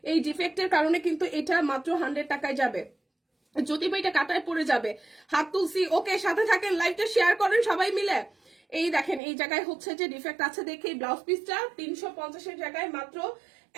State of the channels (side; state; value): left; drops out; at 9.2 s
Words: এই ডিফেক্টের কারণে কিন্তু এটা মাত্র 100 টাকায় যাবে। যদি বা এটা কাটায় পড়ে যাবে, হাত তুলসি। ওকে, সাথে থাকেন, লাইভটা শেয়ার করেন সবাই মিলে। এই দেখেন এই জায়গায় হচ্ছে যে ডিফেক্ট আছে দেখে এই ব্লাউজ পিসটা 350-এর জায়গায় মাত্র